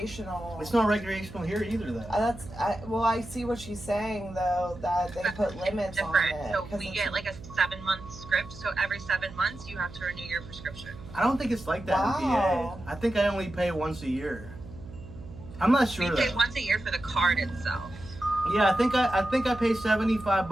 It's not recreational here either, though. I see what she's saying, though, that they put limits on it. So we get like a 7-month script, so every 7 months you have to renew your prescription. I don't think it's like that in PA. I think I only pay once a year. I'm not sure. We pay once a year for the card itself. Yeah, I think I pay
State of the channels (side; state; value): right; noise; hum, 15 dB below the sound